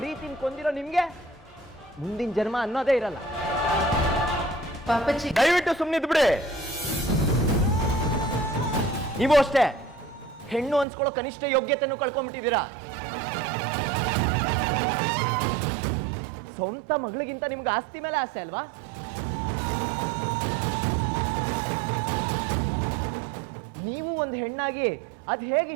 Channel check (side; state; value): left; drops out; at 10.9 s